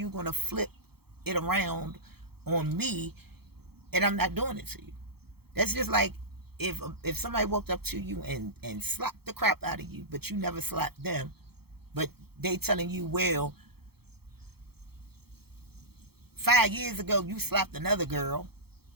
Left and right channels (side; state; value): left; late; 0.96 ms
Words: going to flip it around on me and I'm not doing it to you? That's just like if somebody walked up to you and slapped the crap out of you, but you never slapped them, but they telling you, well, 5 years ago you slapped another girl,